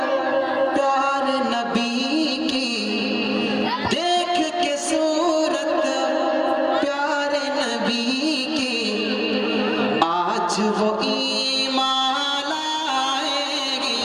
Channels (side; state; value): both; identical; correlation 1.00